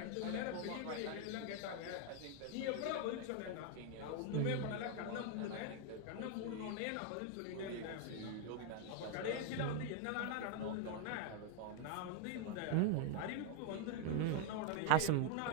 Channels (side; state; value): both; different; correlation 0.01